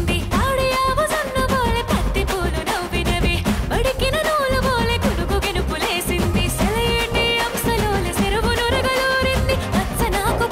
ఆడియావు సన్ను బోలే పత్తి పూలు నవ్వినవి బడికిన నూలు బోలే కునుకు గెనుపులేసింది సెలయేటి అంశలోలే చెరువు నురగలూరింది పచ్చనాకు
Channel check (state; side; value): identical; both; correlation 1.00